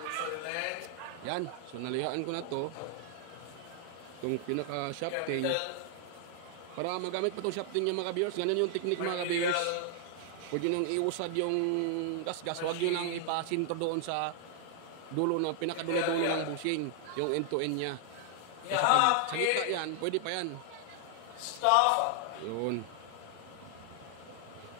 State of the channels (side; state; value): both; different; correlation 0.00